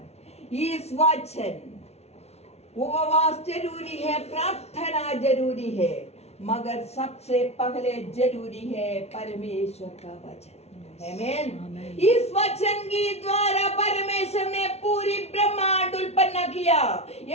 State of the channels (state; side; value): late; right; 0.31 ms